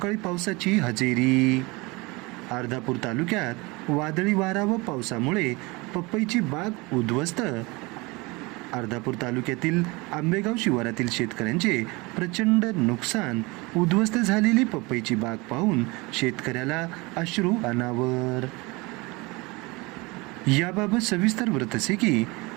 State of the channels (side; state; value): left; quieter; 24.8 dB